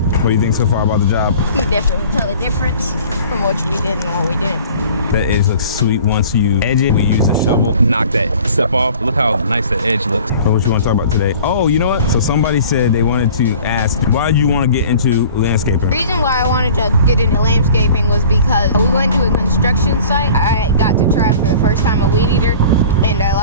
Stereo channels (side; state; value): both; inverted; correlation -0.45